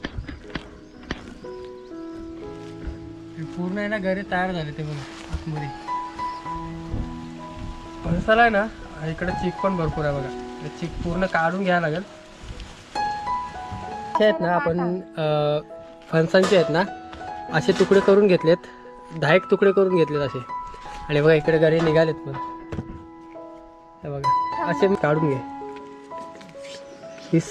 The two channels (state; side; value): identical; both; correlation 1.00